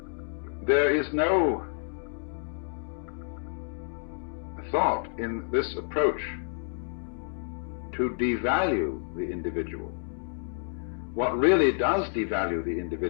there is no thought in this approach to devalue the individual. What really does devalue the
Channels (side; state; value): right; silent; digital silence